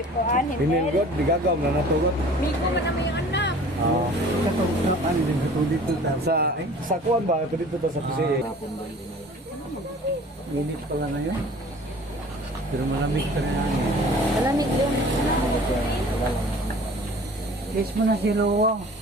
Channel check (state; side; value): normal; both; correlation 0.47